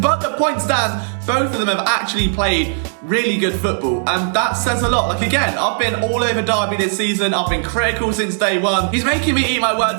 but the point stands, both of them have actually played really good football, and that says a lot. Like, again, I've been all over Darby this season. I've been critical since day one. He's making me eat my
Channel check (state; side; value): silent; left; digital silence